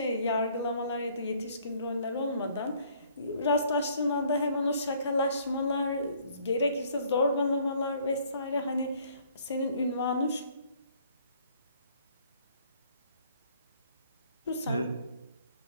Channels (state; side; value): inverted; both; correlation -0.61